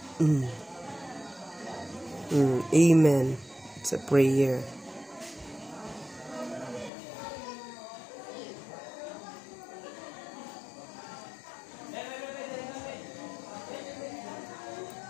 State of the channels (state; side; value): drops out; right; at 6.9 s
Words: Amen. It's a prayer.